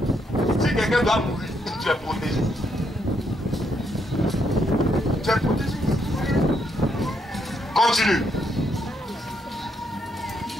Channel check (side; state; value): both; normal; correlation 0.76